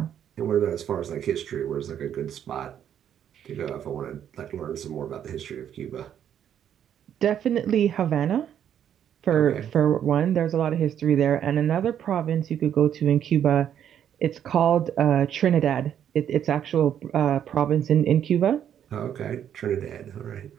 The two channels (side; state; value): left; quieter; 9.5 dB